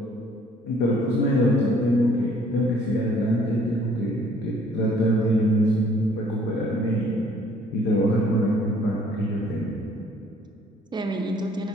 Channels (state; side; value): normal; both; correlation 0.59